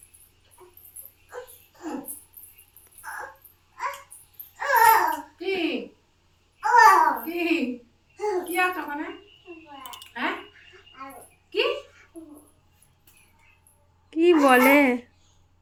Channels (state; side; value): identical; both; correlation 1.00